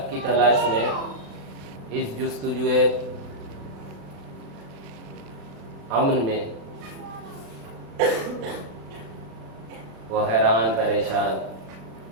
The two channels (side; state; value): left; late; 35 ms